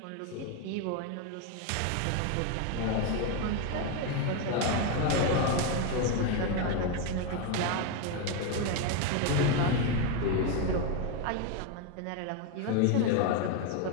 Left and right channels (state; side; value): different; both; correlation 0.02